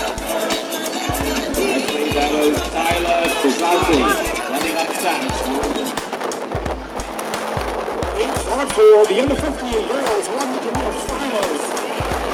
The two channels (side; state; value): both; identical; correlation 1.00